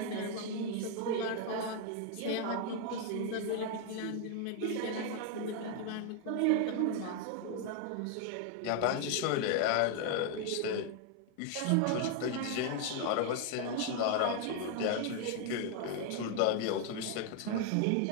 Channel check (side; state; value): both; different; correlation 0.00